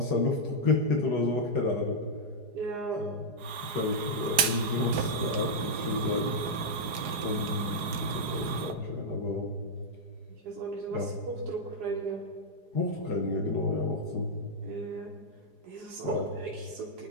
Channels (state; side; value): late; left; 4.8 ms